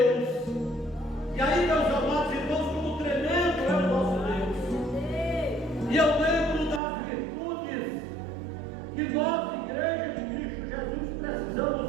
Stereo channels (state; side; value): drops out; left; at 6.8 s